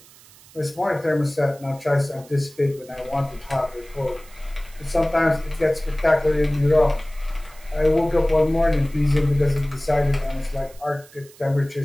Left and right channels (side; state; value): right; noise; hiss, 24 dB below the sound